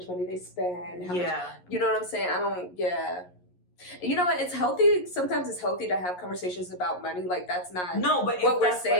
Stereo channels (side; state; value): right; late; 11 ms